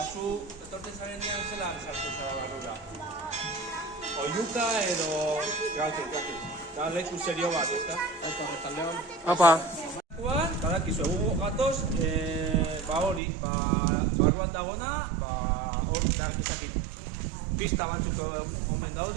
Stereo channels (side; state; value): left; drops out; at 13.2 s